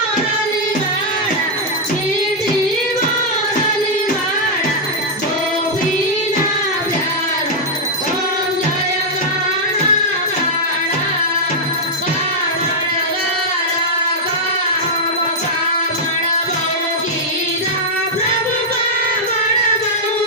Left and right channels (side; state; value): both; normal; correlation -0.05